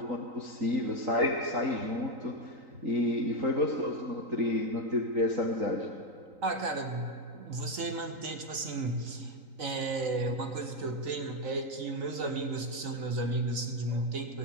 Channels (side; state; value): left; late; 3.9 ms